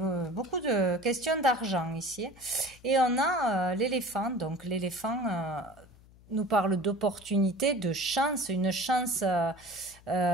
beaucoup de questions d'argent ici. Et on a l'éléphant, donc l'éléphant nous parle d'opportunité, de chance, une chance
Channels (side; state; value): left; noise; hum, 25 dB below the sound